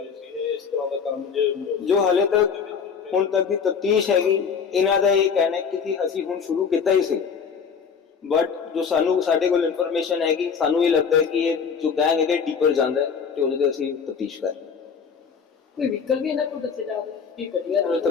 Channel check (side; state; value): right; quieter; 6.3 dB